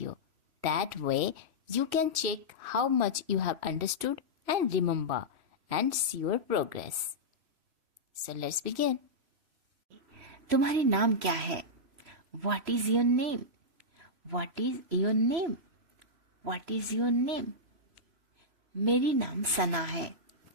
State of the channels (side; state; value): left; late; 3.0 ms